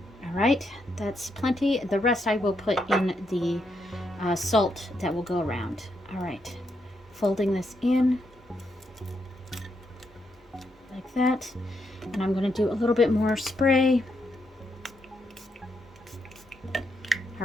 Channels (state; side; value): normal; both; correlation 0.79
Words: All right, that's plenty. The rest I will put in the salt that will go around. All right. Folding this in like that, and I'm going to do a little bit more spray.